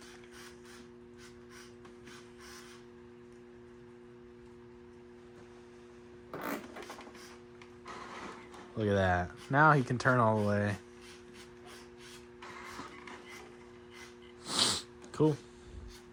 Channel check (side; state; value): both; identical; correlation 1.00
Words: Look at that. Now he can turn all the way. Cool.